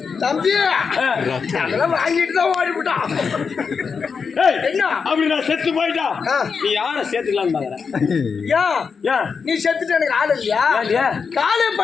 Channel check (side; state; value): right; quieter; 5.6 dB